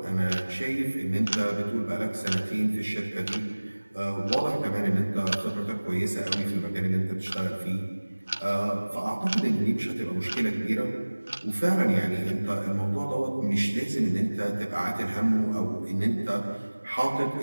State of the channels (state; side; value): inverted; both; correlation -1.00